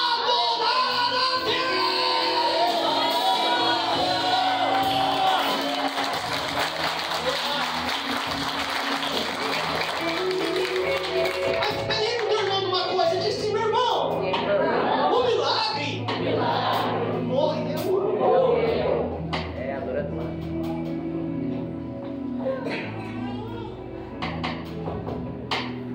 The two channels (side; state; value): both; identical; correlation 1.00